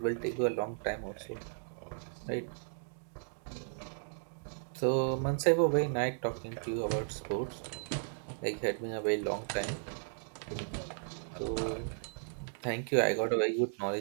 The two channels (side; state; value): left; silent; digital silence